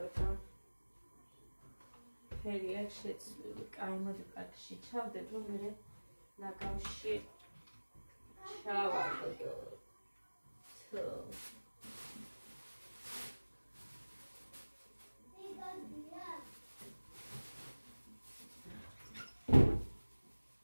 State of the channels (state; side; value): inverted; both; correlation -1.00